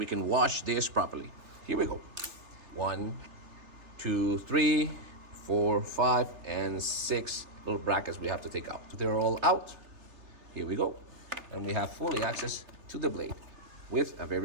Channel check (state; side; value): late; left; 3.3 ms